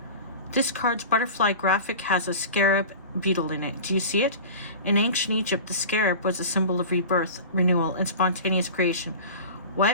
This card's butterfly graphic has a scarab beetle in it. Do you see it? In ancient Egypt, the scarab was a symbol of rebirth, renewal, and spontaneous creation.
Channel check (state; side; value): inverted; both; correlation -0.35